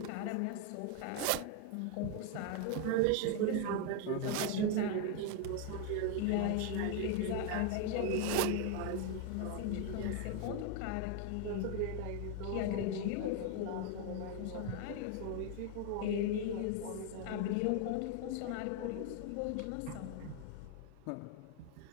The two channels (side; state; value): both; different; correlation 0.01